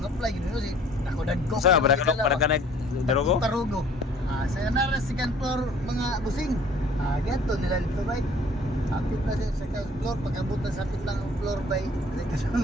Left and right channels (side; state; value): both; normal; correlation 0.54